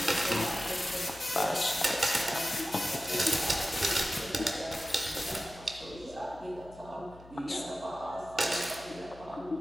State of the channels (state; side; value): noise; left; hum, 20 dB below the sound